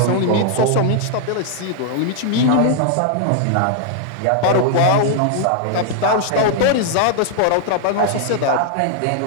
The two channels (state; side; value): different; both; correlation 0.00